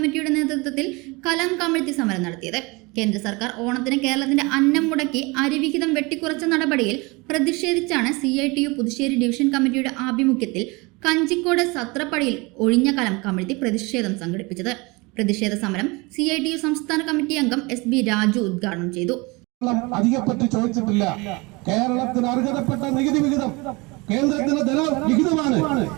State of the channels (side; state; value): left; quieter; 25.9 dB